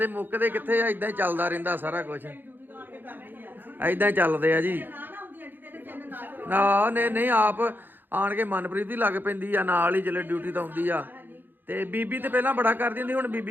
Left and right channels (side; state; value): left; late; 0.092 ms